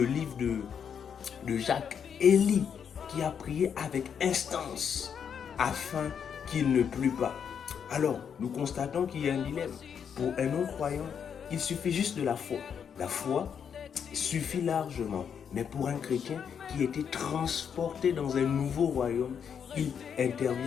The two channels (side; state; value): right; quieter; 7.5 dB